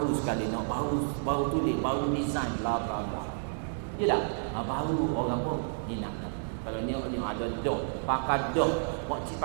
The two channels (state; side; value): silent; left; 55 dB below the other